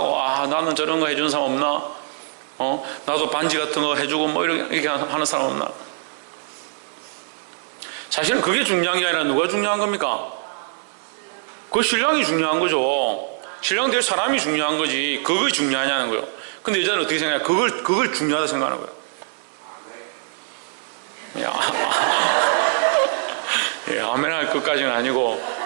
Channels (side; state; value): left; silent; digital silence